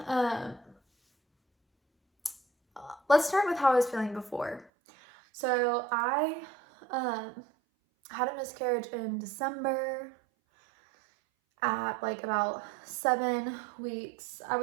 let's start with how I was feeling before. So I had a miscarriage in December at like about 7 weeks. I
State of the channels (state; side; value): drops out; left; at 4.7 s